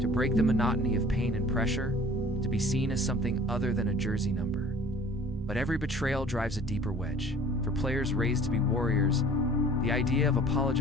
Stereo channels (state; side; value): normal; both; correlation 0.49